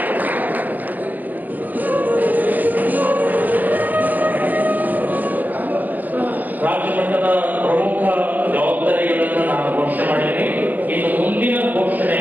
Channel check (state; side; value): late; left; 0.083 ms